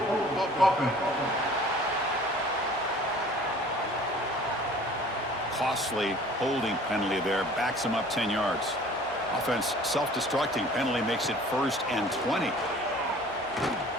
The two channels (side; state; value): both; normal; correlation 0.49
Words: Costly holding penalty there. Backs him up 10 yards. Offense self-destructing. Penalty makes it 1st and 20.